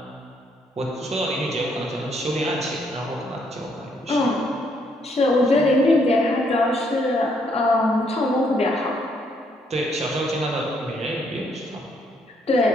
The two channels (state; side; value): normal; both; correlation 0.71